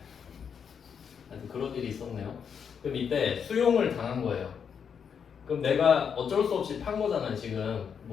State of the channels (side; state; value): right; quieter; 7.1 dB